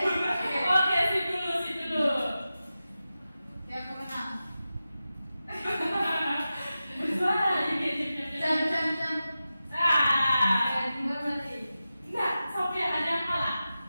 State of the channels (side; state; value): both; inverted; correlation -0.93